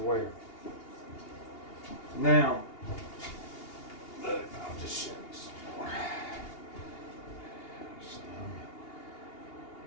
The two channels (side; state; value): right; late; 2.8 ms